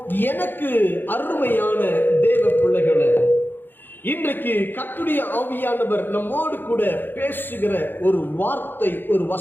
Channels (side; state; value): right; late; 0.095 ms